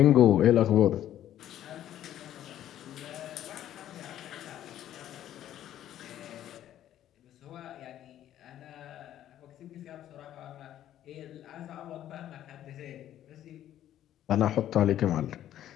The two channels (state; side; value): quieter; right; 11.9 dB